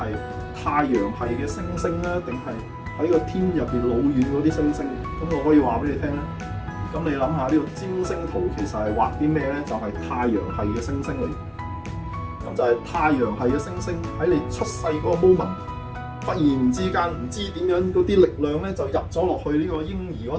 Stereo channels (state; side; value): identical; both; correlation 1.00